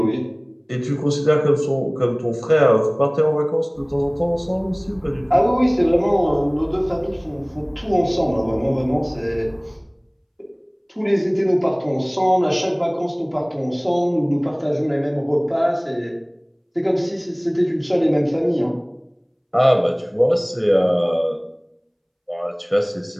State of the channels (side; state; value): both; identical; correlation 1.00